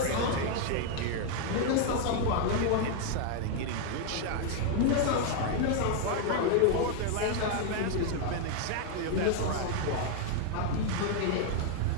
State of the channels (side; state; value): both; different; correlation 0.00